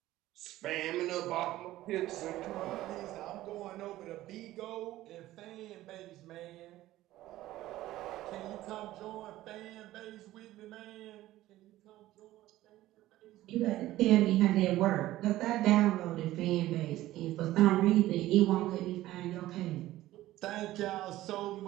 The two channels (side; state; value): left; quieter; 15.5 dB